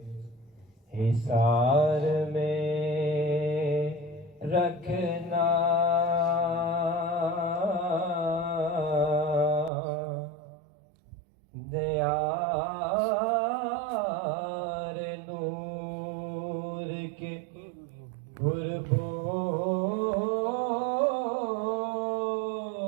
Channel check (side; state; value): left; drops out; at 9.7 s